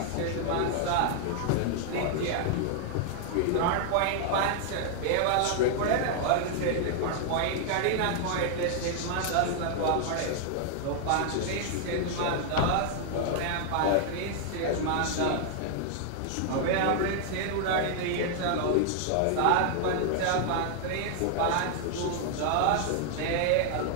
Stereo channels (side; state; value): both; different; correlation 0.00